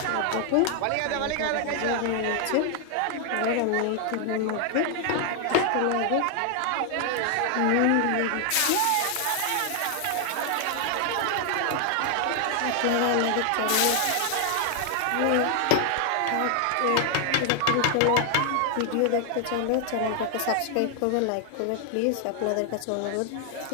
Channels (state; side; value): different; both; correlation 0.00